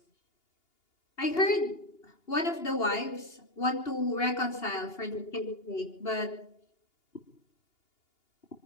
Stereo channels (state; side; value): late; right; 2.8 ms